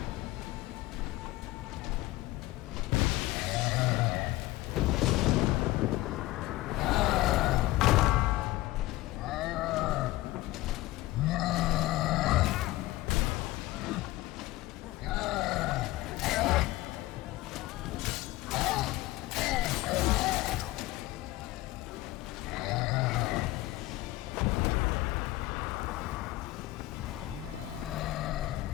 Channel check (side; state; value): right; quieter; 18.0 dB